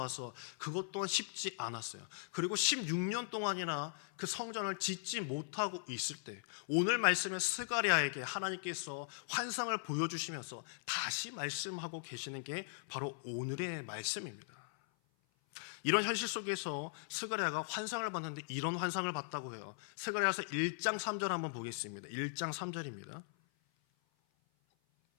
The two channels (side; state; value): right; silent; 52 dB below the other